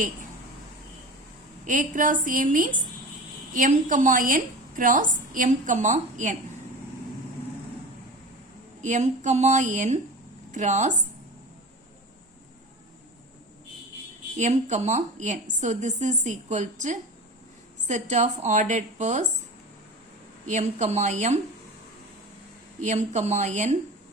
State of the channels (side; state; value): both; normal; correlation 0.32